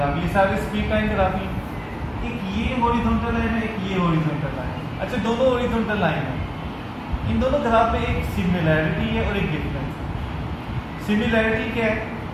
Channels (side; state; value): both; identical; correlation 1.00